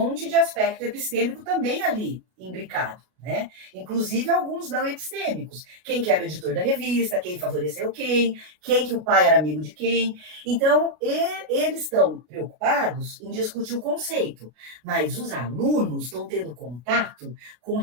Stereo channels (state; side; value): late; left; 33 ms